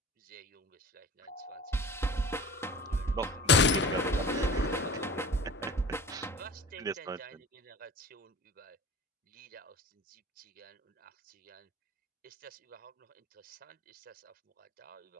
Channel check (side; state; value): both; normal; correlation 0.40